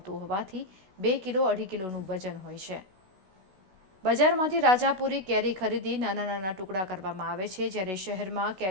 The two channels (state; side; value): late; left; 16 ms